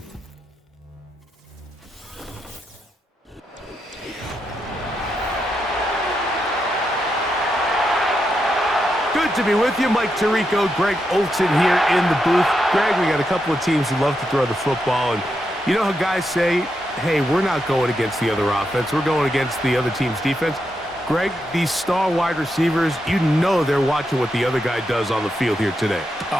Good to be with you. Mike Tirico, Greg Olson here in the booth. Greg, we got a couple of teams who love to throw the football, and you know how guys say, hey, we're not going against the other offense. We're going against the other team's defense. Greg, these star wide receivers, you know they're watching what the other guy does on the field here today.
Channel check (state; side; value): normal; both; correlation 0.84